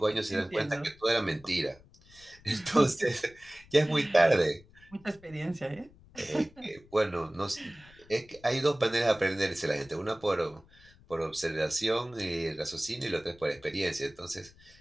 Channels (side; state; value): left; noise; rumble, 25 dB below the sound